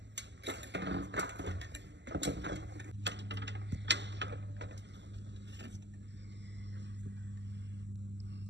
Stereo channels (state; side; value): late; left; 0.51 ms